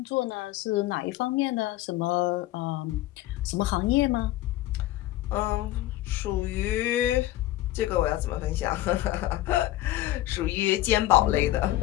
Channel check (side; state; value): right; quieter; 15.6 dB